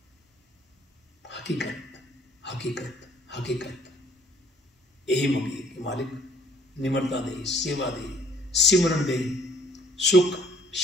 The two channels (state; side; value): normal; both; correlation 0.58